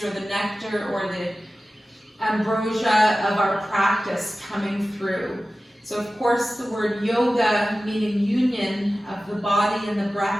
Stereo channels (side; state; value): both; normal; correlation 0.96